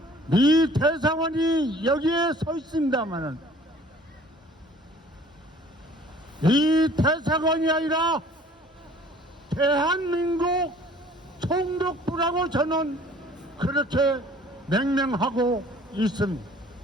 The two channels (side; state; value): both; normal; correlation 0.52